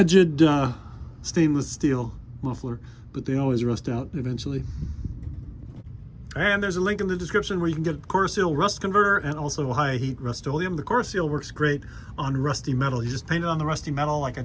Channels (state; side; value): identical; both; correlation 1.00